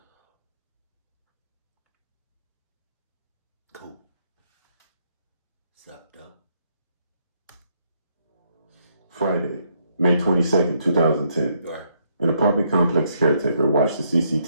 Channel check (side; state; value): both; inverted; correlation -0.74